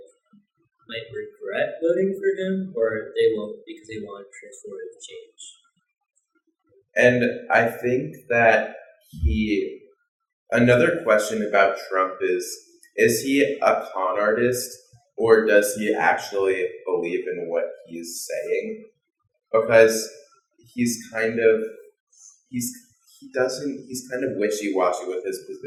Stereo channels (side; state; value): both; identical; correlation 1.00